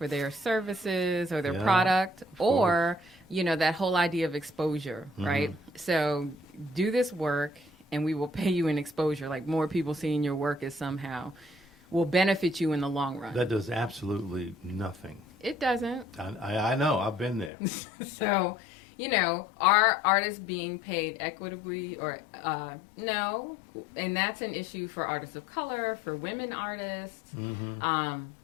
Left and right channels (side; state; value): right; drops out; at 17.5 s